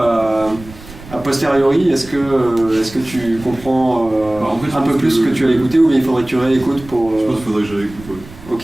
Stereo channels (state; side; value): noise; right; rumble, 18 dB below the sound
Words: posteriori, est-ce que tu comprends en fait, un peu plus ce que tu as écouté ou bien il faudrait que tu réécoutes pour... Je pense qu'il faudrait que je réécoute, ouais.